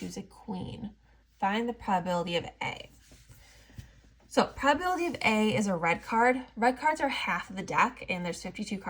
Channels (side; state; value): both; identical; correlation 1.00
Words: a queen. Find the probability of A. So probability of A is a red card. Red cards are half of the deck, and there's 52